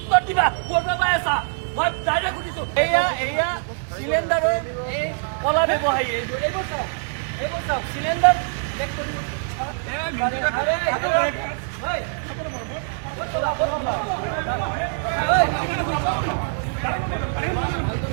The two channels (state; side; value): silent; left; digital silence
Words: দিবা ক'ৰ পৰা পাই আছা মই ডাইৰেক্ট সুধিছো এয়া চিলিণ্ডাৰৰ এই কলা ব্যৱসায়ী এইবোৰ চাওক চিলিণ্ডাৰ চেক কৰি